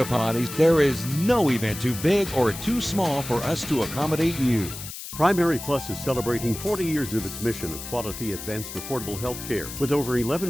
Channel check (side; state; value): left; noise; hiss, 10 dB below the sound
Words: Potties, there is no event too big or too small for us to accommodate you. Primary Plus is celebrating 40 years of its mission of quality, advanced, affordable health care. With over